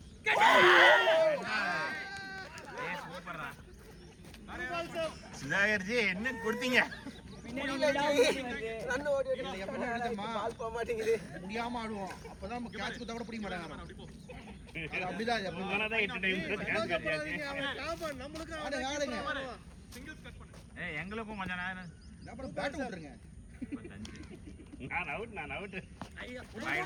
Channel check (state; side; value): identical; both; correlation 1.00